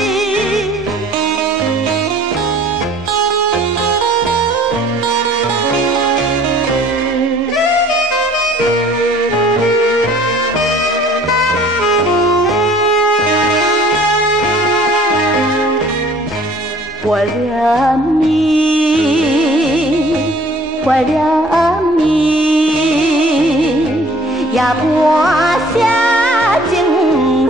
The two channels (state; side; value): normal; both; correlation 0.53